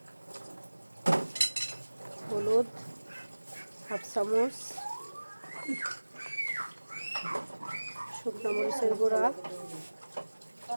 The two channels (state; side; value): inverted; both; correlation -1.00